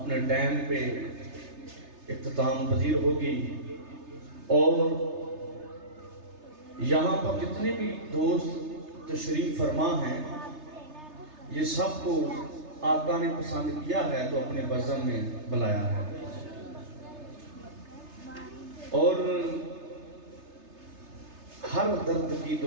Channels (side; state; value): left; late; 3.3 ms